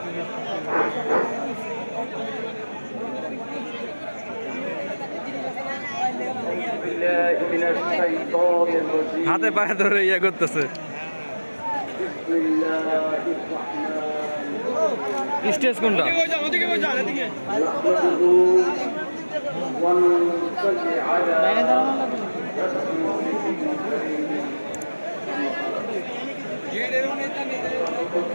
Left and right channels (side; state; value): both; inverted; correlation -1.00